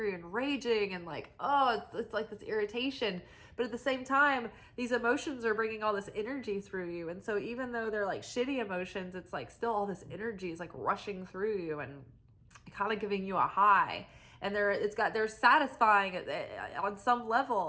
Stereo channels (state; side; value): identical; both; correlation 1.00